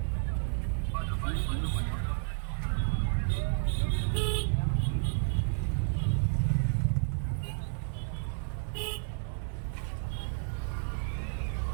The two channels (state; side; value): silent; left; 57 dB below the other